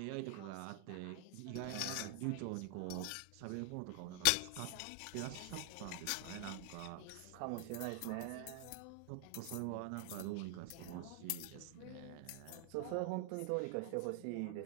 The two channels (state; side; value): different; both; correlation 0.00